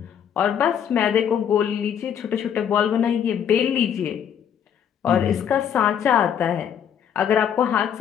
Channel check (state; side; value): quieter; right; 8.7 dB